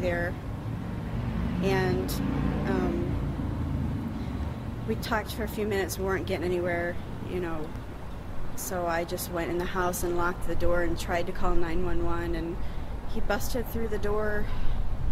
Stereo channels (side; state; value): both; identical; correlation 1.00